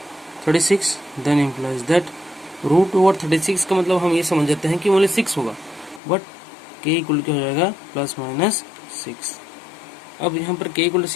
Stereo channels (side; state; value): right; drops out; at 6.0 s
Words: 36. Then implies that root over 36 का मतलब हम ये समझ जाते हैं कि ओनली 6 होगा, बट k इक्वल क्या हो जाएगा, प्लस माइनस 6. अब यहाँ पर k इक्वल टू